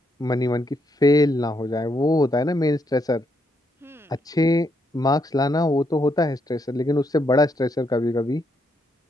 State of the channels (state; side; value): normal; both; correlation 0.77